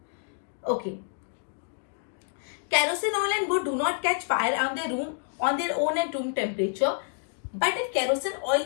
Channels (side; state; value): right; silent; digital silence